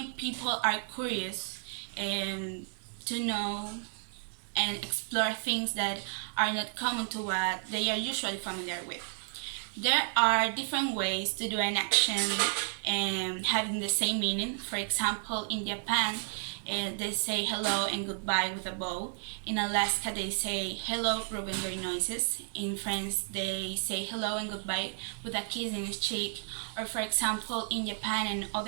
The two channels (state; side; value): silent; left; digital silence